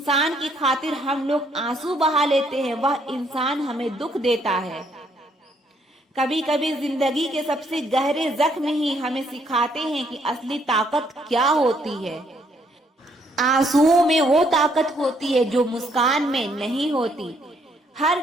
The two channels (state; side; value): normal; both; correlation 0.69